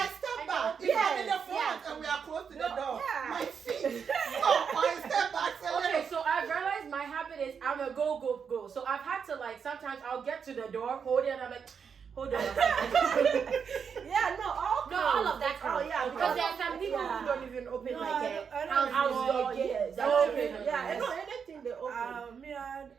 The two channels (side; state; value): left; quieter; 6.6 dB